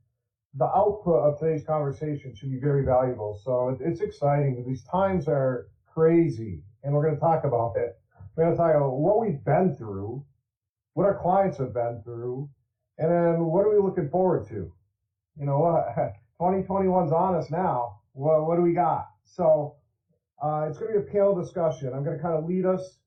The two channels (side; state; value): both; identical; correlation 1.00